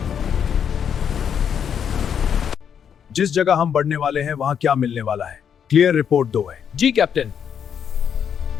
जिस जगह हम बढ़ने वाले हैं, वहां क्या मिलने वाला है? क्लियर रिपोर्ट दो है। जी कैप्टन।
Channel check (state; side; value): quieter; right; 8.0 dB